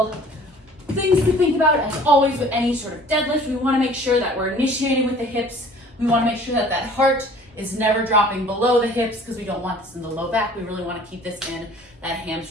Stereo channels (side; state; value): both; normal; correlation 0.50